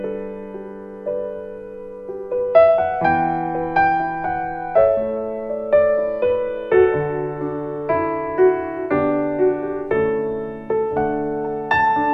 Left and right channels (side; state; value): both; identical; correlation 1.00